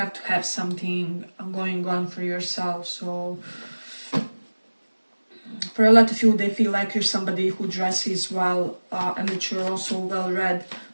to have something going on for yourself. So for a lot of you, they feel like you're somebody who dresses well, and that you're also well read,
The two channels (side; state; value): both; inverted; correlation -1.00